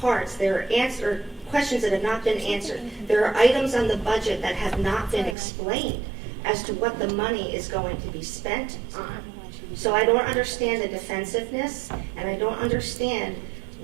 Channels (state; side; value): drops out; left; at 5.4 s